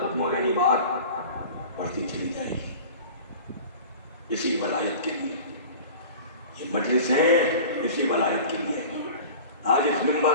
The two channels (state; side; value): inverted; both; correlation -0.38